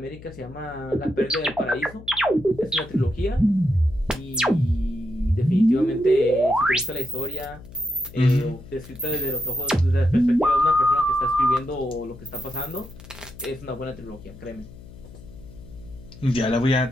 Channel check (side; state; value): left; noise; hum, 18 dB below the sound